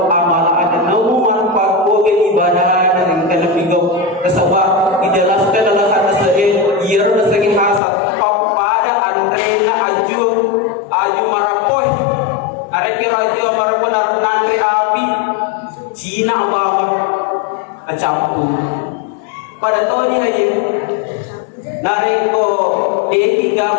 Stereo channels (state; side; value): drops out; right; at 7.8 s